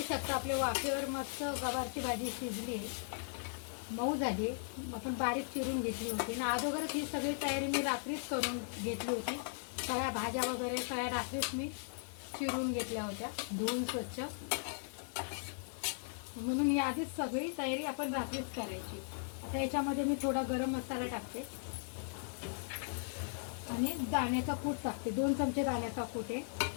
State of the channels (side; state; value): right; silent; digital silence